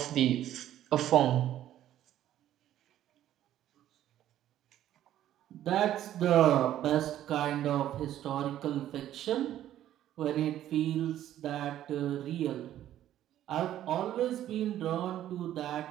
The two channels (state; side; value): quieter; left; 12.2 dB